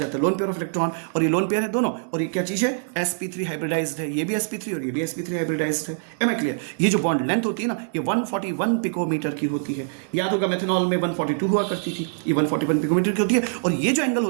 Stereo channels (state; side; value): silent; left; 62 dB below the other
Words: है लोन पेयर ऑफ इलेक्ट्रॉन, और ये लोन पेयर है दोनों। और ये क्या चीज़ है? sp3 हाइब्रिडाइज्ड है, ये भी sp3 और ये भी sp3 हाइब्रिडाइज्ड है। Am I clear? ये जो बॉन्ड लेंथ होती है ना, ये 141 पिकोमीटर की होती है। याद होगा मेथनॉल में 142 हुआ करती थी, ये 141 पिकोमीटर की होती है। और ये जो एंगल